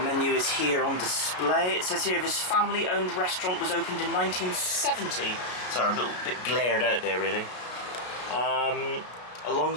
is here on display. It says here this family-owned restaurant was opened in 1970. Sorry, a little bit glared out there, really.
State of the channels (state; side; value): late; right; 33 ms